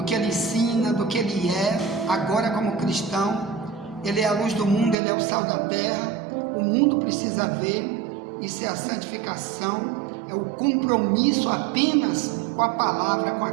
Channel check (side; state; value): left; drops out; at 5.0 s